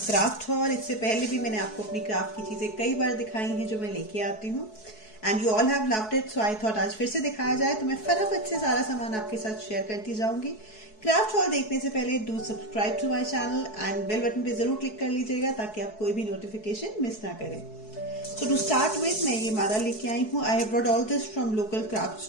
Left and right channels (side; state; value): right; late; 4.7 ms